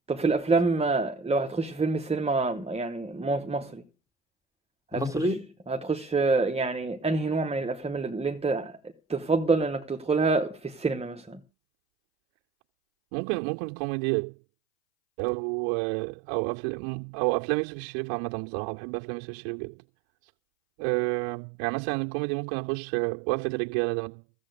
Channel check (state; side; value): drops out; left; at 11.5 s